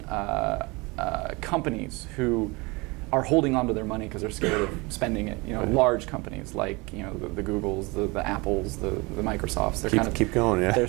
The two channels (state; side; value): quieter; left; 25.9 dB